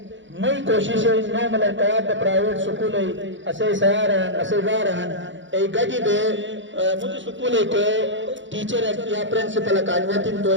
مئی کوشش ہے نو ملکات پرائیویٹ سکول ہے اسے سیار ہیں اسے گار ہیں ایک گڑی دے مجھے سکول ہے کہ ٹیچر یا پرنسپل اکانویتی تو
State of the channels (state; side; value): late; left; 0.55 ms